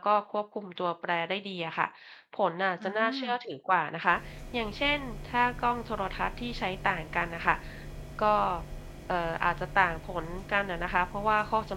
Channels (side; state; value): both; identical; correlation 1.00